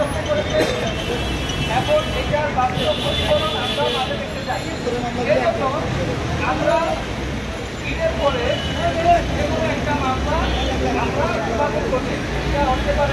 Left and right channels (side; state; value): both; identical; correlation 1.00